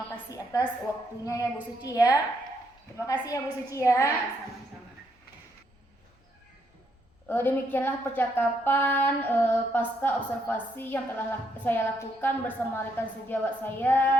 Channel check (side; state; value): both; normal; correlation 0.74